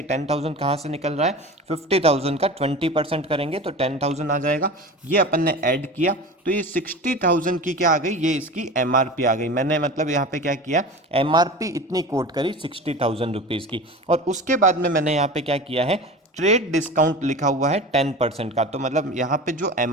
10,000 कहाँ से निकल रहा है, 50,000 का 20% करेंगे तो 10,000 आ जाएगा, ये अपन ने ऐड किया। तो ये 60,000 की क्या आ गई, ये इसकी एमआरपी आ गई। मैंने मतलब यहाँ पे क्या किया, एमआरपी इतनी कोट करी 60,000 रुपीज़ की। और उसके बाद में मैंने यहाँ पे क्या किया है, ट्रेड डिस्काउंट लिखा हुआ है 10% का। तो मतलब यहाँ पे जो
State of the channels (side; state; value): both; normal; correlation 0.33